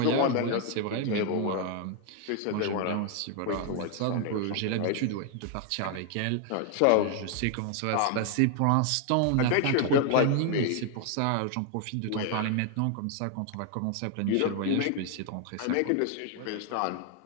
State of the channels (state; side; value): different; both; correlation 0.00